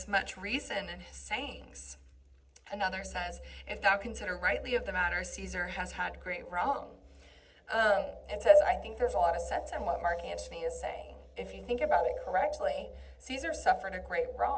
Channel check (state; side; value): identical; both; correlation 1.00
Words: much reason in his sayings. Another says, if thou consider rightly of the matter, Caesar has had great wrong. It says, I think there's a lot of sense in what Mark Antony is saying. If you think about it correctly, Caesar suffered a great